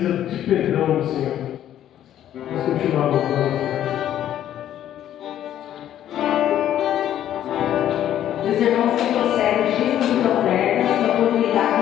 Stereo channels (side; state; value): right; quieter; 11.4 dB